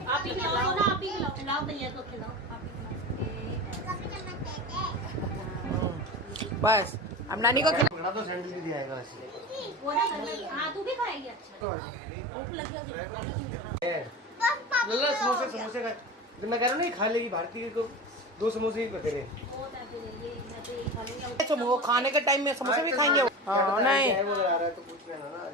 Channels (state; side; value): normal; both; correlation 0.29